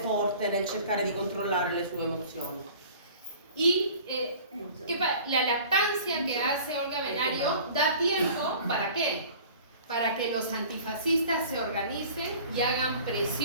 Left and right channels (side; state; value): both; inverted; correlation -0.45